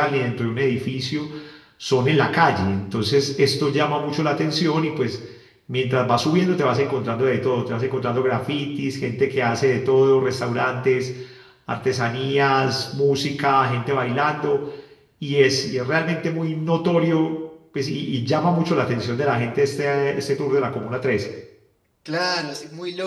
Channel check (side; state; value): both; identical; correlation 1.00